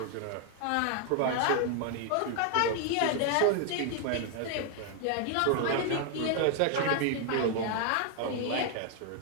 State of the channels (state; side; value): different; both; correlation 0.00